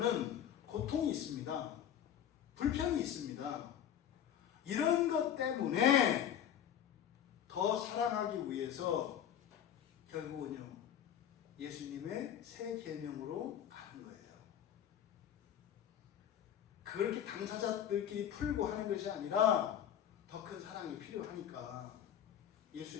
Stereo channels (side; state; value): right; quieter; 9.8 dB